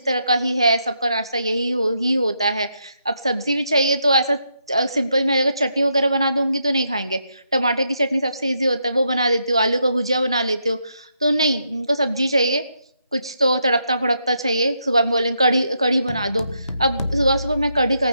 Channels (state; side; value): inverted; both; correlation -0.79